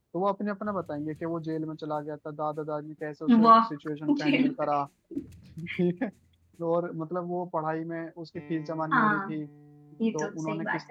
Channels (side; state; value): both; identical; correlation 1.00